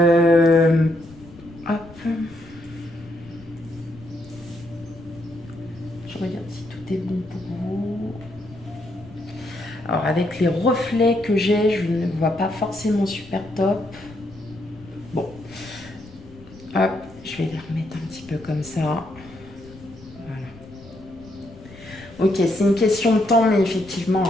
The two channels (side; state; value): left; noise; rumble, 20 dB below the sound